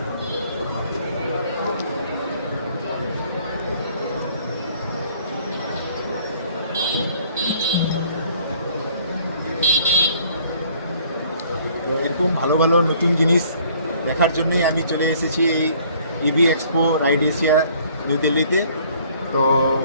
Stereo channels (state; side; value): inverted; both; correlation -0.59